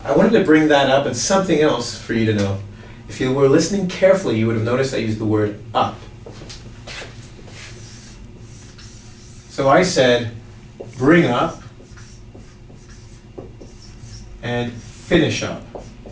I wanted to bring that up and something else for you to know. If you were listening carefully, you would have noticed I used the word up. So I said bring up and finish up.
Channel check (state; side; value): identical; both; correlation 1.00